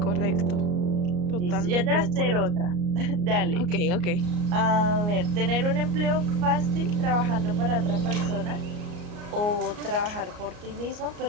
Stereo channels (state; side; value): late; left; 34 ms